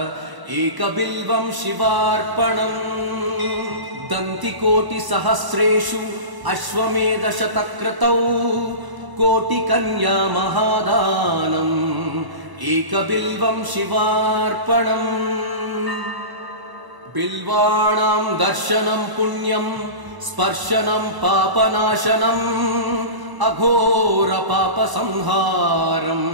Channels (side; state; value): left; late; 1.0 ms